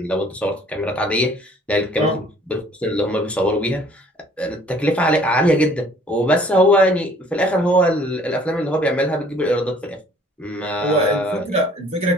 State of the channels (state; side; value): normal; both; correlation 0.56